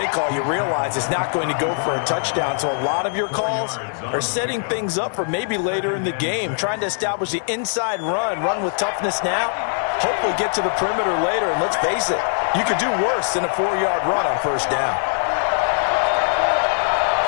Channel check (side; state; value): right; silent; 58 dB below the other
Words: call, you realize it's not going to go for a touchdown. So a lot of your calls are setting things up for maybe later in the game, trying to establish the inside run with toughness now, hopefully get to the perimeter later. And let's face it, you could do worse than a 4-yard run on 1st down.